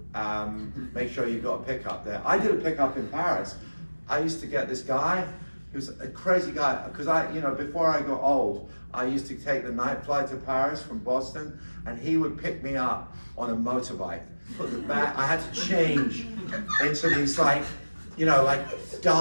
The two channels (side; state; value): both; inverted; correlation -1.00